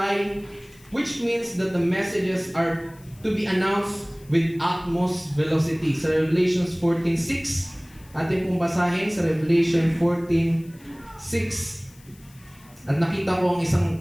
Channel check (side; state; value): left; noise; hiss, 26 dB below the sound